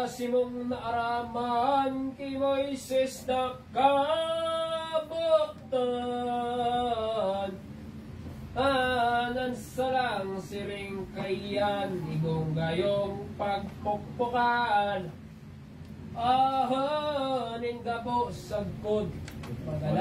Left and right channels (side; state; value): both; identical; correlation 1.00